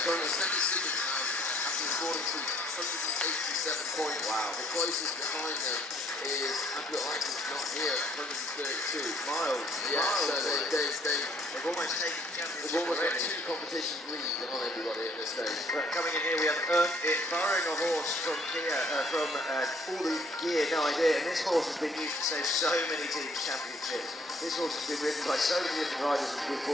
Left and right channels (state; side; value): normal; both; correlation 0.63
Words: Sandringham now, after scoring to 187 points. Wow. The closest behind them is HBUK not here, 132 miles. Yeah, miles, so they've almost taken the championship. They've almost got two competitions lead on everybody at this stage. But coming in here, we have Earned It, borrowing a horse from Kia, from All the Gear, no idea. And this horse has been used to save so many teams' championships. This horse has been ridden by so many different riders with